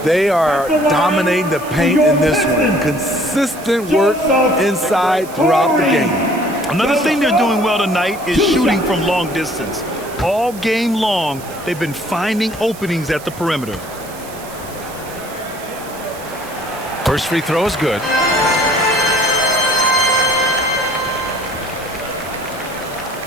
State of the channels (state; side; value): noise; right; hiss, 17 dB below the sound